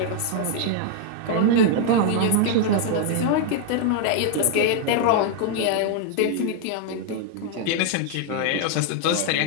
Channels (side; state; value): both; different; correlation 0.00